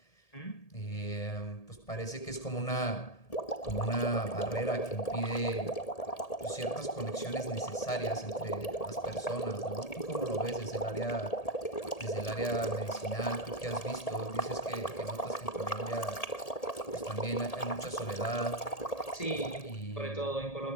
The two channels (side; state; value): right; late; 1.8 ms